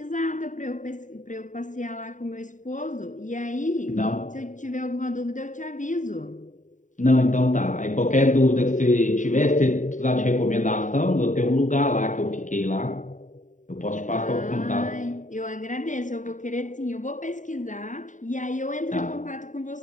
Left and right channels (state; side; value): late; right; 0.36 ms